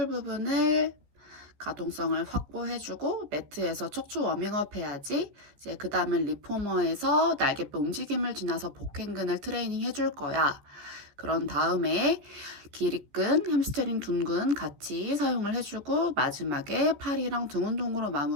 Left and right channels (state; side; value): late; left; 14 ms